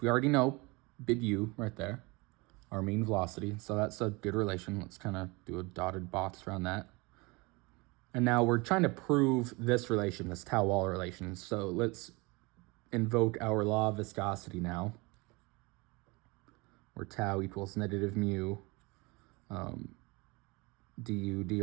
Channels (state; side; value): quieter; left; 25.9 dB